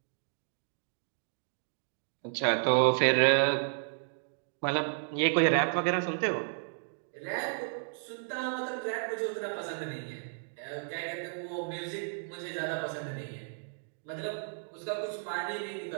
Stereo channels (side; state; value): left; silent; digital silence